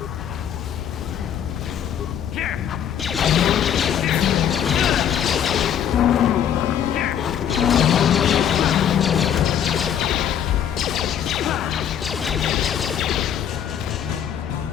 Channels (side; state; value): right; quieter; 9.3 dB